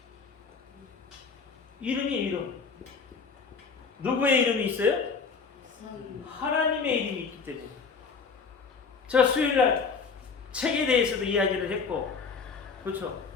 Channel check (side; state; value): right; quieter; 5.2 dB